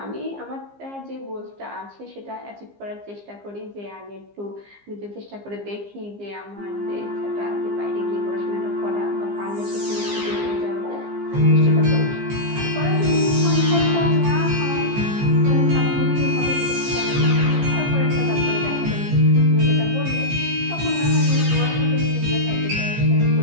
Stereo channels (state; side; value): late; left; 15 ms